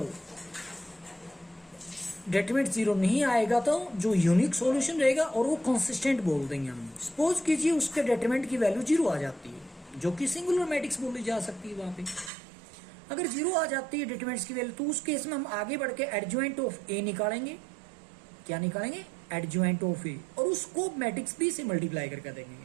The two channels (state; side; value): drops out; left; at 12.3 s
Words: डिटरमिनेंट जीरो नहीं आएगा तो जो यूनिक सॉल्यूशन रहेगा और वो कंसिस्टेंट बोल देंगे हम. सपोज कीजिए उसके डिटरमिनेंट की वैल्यू जीरो आ जाती है, जो कि सिंगुलर मैट्रिक्स बोली जा सकती है. वहां पे अगर जीरो आ जाती है डिटरमिनेंट्स की वैल्यू, तो उस केस में हम आगे बढ़ के एडजॉइंट ऑफ ए निकालेंगे. क्या निकालेंगे, एडजॉइंट ऑफ ए, और उसको मैट्रिक्स बी से मल्टीप्लाई करके